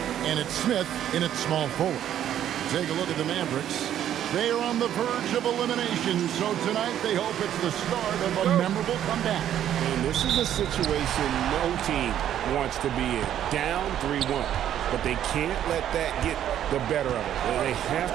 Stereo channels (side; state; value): left; quieter; 10.8 dB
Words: and it's Smith in its small forward. Take a look at the Mavericks. They are on the verge of elimination, so tonight they hope it's the start of a memorable comeback. And this is a situation no team wants to be in. Down 3-1. But they can't let that get the better of it. They have